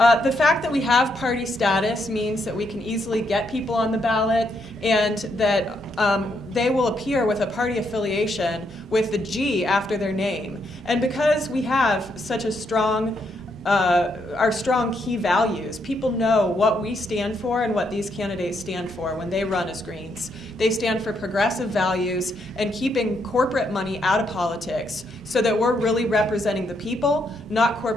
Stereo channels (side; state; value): both; normal; correlation 0.77